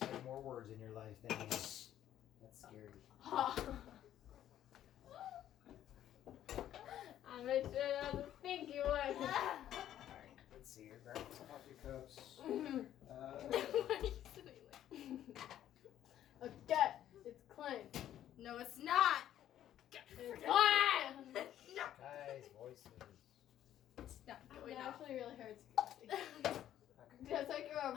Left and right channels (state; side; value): quieter; right; 11.6 dB